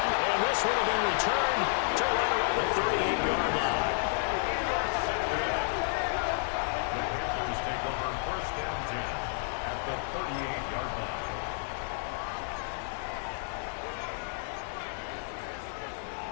And this one will be returned to right around the 38-yard line. The Panthers take over 1st and 10 at the 38-yard line.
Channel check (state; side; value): silent; right; 57 dB below the other